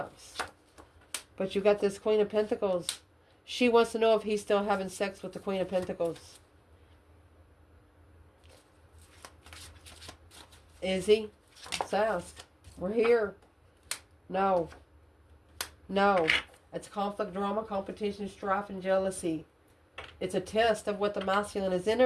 But you got this Queen of Pentacles. She wants to know if he's still having sex with the Queen of Pentacles. Is he? Let's ask. We're here. No. No. It's conflict, drama, competition, strife, and jealousy. It's a test of what the masculine is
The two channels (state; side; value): identical; both; correlation 1.00